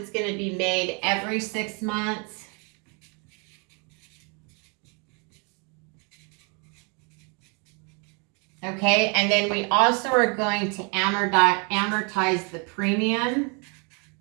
going to be made every 6 months. Okay, and then we also are going to amortize the premium.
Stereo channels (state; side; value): quieter; left; 34.6 dB